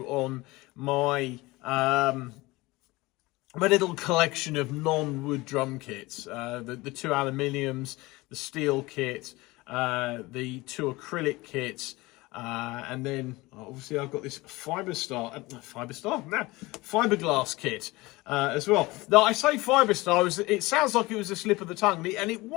on my my little collection of non-wood drum kits, the 2 aluminiums, the steel kit, the 2 acrylic kits, and then obviously I've got this fiberglass kit as well. Now I say Fiberstar, it sounds like it was a slip of the tongue, and it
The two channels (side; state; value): right; quieter; 21.4 dB